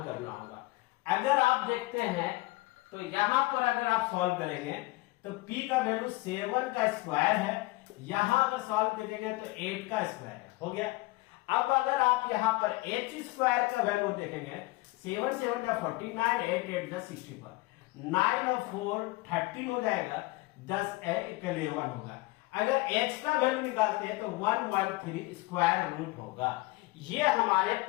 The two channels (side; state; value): right; quieter; 21.5 dB